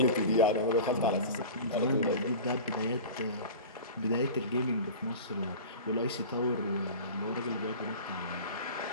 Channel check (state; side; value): inverted; both; correlation -0.35